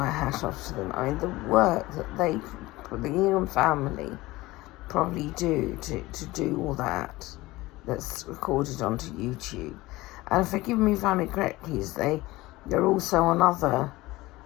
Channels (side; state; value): right; quieter; 19.4 dB